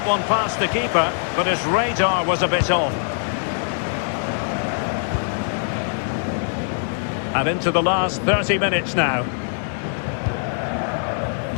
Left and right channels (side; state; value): right; silent; 64 dB below the other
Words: one past the keeper, but his radar was a bit off. And into the last 30 minutes now.